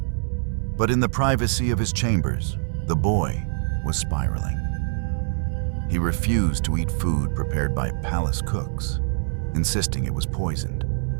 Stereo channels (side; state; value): left; silent; digital silence